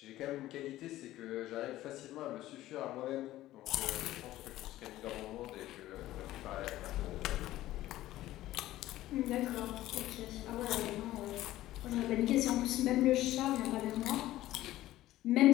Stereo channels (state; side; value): quieter; right; 15.2 dB